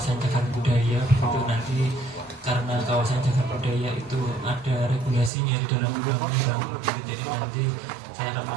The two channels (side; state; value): left; drops out; at 5.3 s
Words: cagar budaya, begitu nanti karena kawasan cagar budaya itu ada regulasinya di dalam undang-undang, jadi nanti saya akan